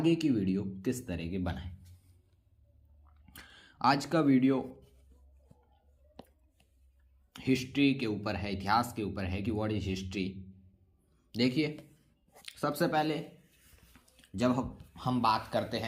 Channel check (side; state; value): both; identical; correlation 1.00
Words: की वीडियो किस तरह की बनाएं। आज का वीडियो हिस्ट्री के ऊपर है, इतिहास के ऊपर है कि व्हाट इज हिस्ट्री। देखिए, सबसे पहले जब हम बात करते